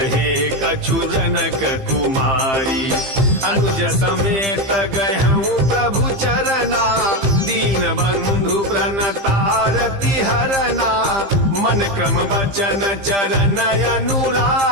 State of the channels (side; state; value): left; late; 15 ms